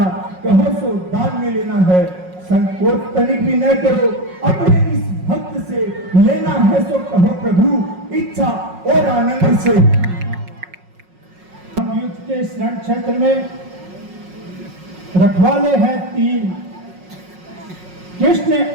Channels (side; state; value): left; late; 5.5 ms